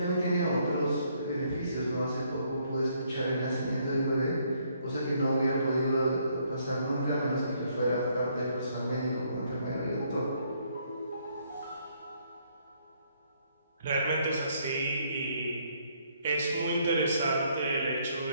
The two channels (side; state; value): both; inverted; correlation -0.69